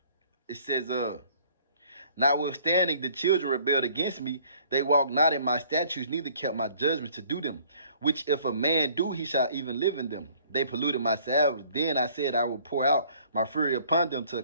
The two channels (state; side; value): inverted; both; correlation -0.57